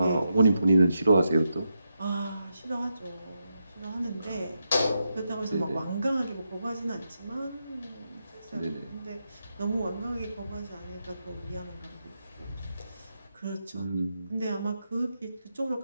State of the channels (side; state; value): both; inverted; correlation -0.85